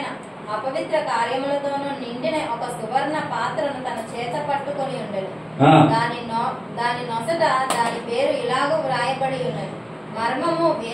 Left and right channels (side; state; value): both; identical; correlation 1.00